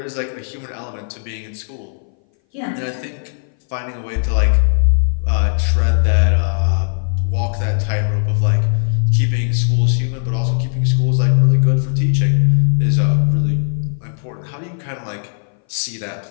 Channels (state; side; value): silent; right; 60 dB below the other